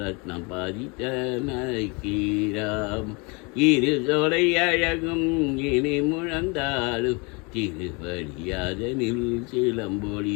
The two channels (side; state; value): right; quieter; 29.8 dB